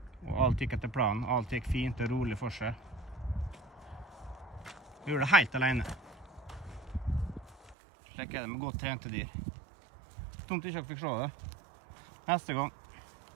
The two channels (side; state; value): left; drops out; at 7.8 s